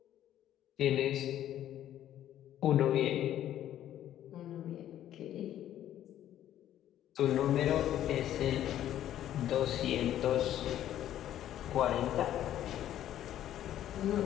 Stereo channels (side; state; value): right; quieter; 11.8 dB